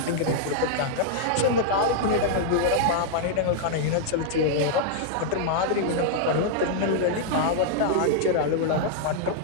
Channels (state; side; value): different; both; correlation -0.01